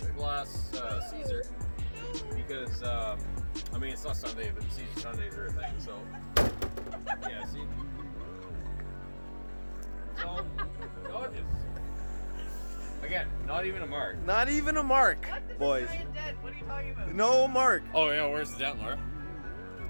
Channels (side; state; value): both; inverted; correlation -1.00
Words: a glass Caesar because I mean it's not Sunday, but Caesar Sundays are a thing. So yeah, see. So gorgeous. Again, not even a mark. Not even a mark, What? This boys. is giant dead. What are you talking about? No mark. Oh yeah, where's the dent, Laura?